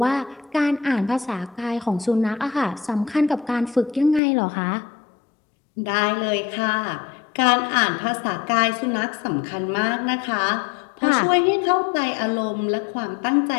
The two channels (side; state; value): right; drops out; at 4.2 s